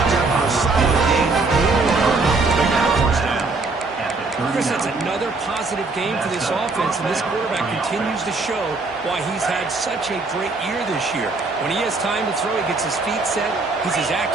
there for a solid gain. Big first down. Chris, that's another positive game for this offense, and this quarterback continues to show why he's had such a great year this year. When he has time to throw, he gets his feet set. He's as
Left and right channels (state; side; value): quieter; left; 3.7 dB